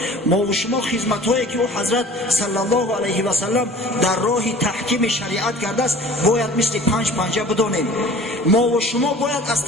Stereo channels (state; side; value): normal; both; correlation 0.45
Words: ما و شما خدمت‌هایی که او حضرت صلی الله علیه و سلم در راه تحکیم شریعت کرده است باید مثل 5 پنجه بدانیم. ما و شما باید از